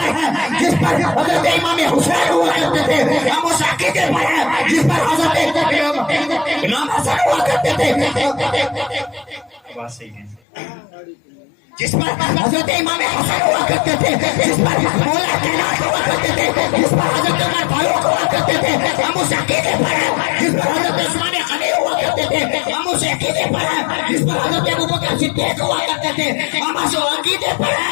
ہیں جس پر حضرت امام حسین ہوا کرتے تھے، ہم اس عقیدے پر ہیں جس پر حضرت امام حسن ہوا کرتے تھے، جس پر حضرت امام حسن ہوا کرتے تھے، جس پر مولا کائنات ہوا کرتے تھے، جس پر حضرت عمر فاروق ہوا کرتے تھے، ہم اس عقیدے پر ہیں جس پر حضرت عثمان غنی ہوا کرتے تھے، ہم اس عقیدے پر ہیں جس پر حضرت ابوبکر صدیق ہوا کرتے تھے، ہم اس عقیدے پر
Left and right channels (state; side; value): drops out; right; at 10.4 s